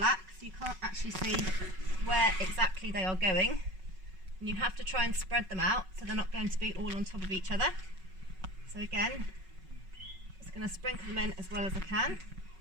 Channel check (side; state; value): left; late; 5.3 ms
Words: so you can't actually see where exactly they are going. And you have to try and spread them out so they're not going to be all on top of each other. So again, just going to sprinkle them in as well as I can.